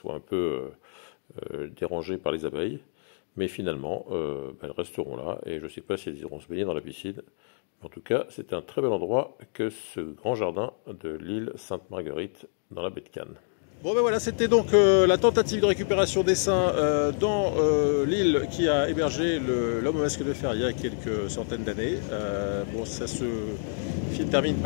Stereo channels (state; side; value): silent; right; digital silence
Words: un peu dérangés par les abeilles. Mais finalement, elles resteront là et je ne sais pas si elles iront se baigner dans la piscine. En tout cas, c'est un très bel endroit que ce grand jardin de l'île Sainte-Marguerite dans la baie de Cannes. Bon ben voilà, c'était donc la tentative de récupération d'essaims dans l'île qui a hébergé l'homme au masque de fer il y a quelques centaines d'années. Bon, ça se termine